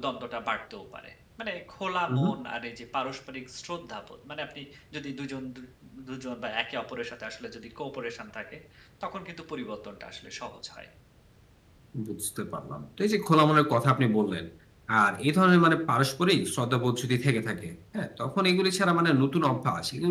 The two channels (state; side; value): identical; both; correlation 1.00